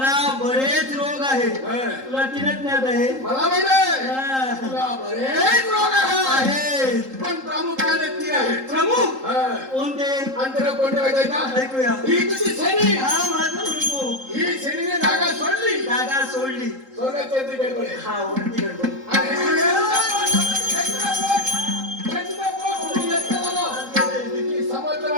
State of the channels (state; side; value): late; left; 3.8 ms